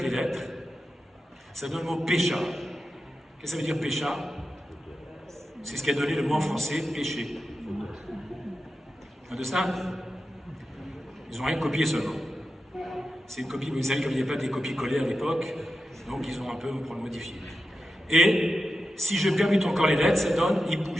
les lettres, ça donne le mot pécha. Qu'est-ce que ça veut dire pécha? C'est ce qui a donné le mot en français péché. De ça, ils n'ont rien copié seulement. C'est une copie, vous savez, comme il n'y avait pas des copies collées à l'époque, donc ils ont un peu pour le modifier. Et si je permute encore les lettres, ça donne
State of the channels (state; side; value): normal; both; correlation 0.91